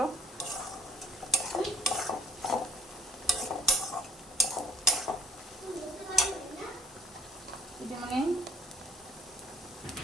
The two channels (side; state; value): both; normal; correlation 0.60